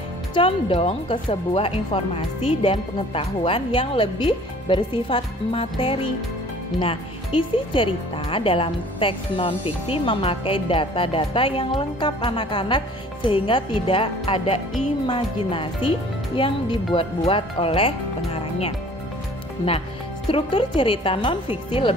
condong ke sebuah informasi dan pengetahuan yang lebih bersifat materi. Nah, isi cerita dalam teks non-fiksi memakai data-data yang lengkap anak-anak sehingga tidak ada imajinasi yang dibuat-buat oleh pengarangnya. Nah, struktur cerita non-fiksi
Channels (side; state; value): both; normal; correlation 0.51